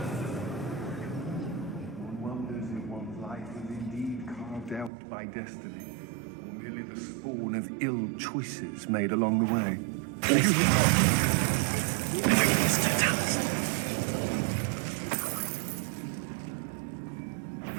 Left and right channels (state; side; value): drops out; left; at 4.9 s